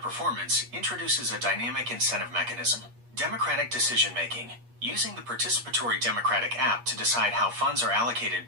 introduces a dynamic incentive mechanism. Democratic decision-making. Using the participatory democratic app to decide how funds are allocated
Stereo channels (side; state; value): left; late; 8.4 ms